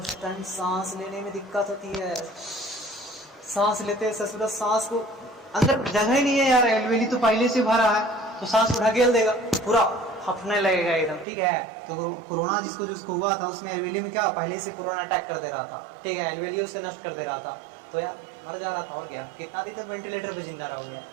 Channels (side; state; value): left; drops out; at 11.2 s